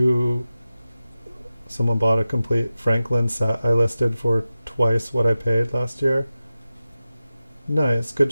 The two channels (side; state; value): both; inverted; correlation -0.94